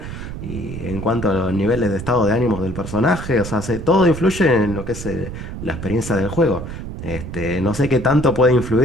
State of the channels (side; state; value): right; noise; rumble, 8 dB below the sound